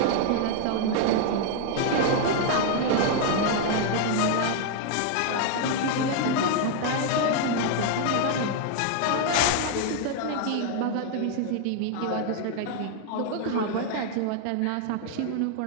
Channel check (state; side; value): different; both; correlation 0.00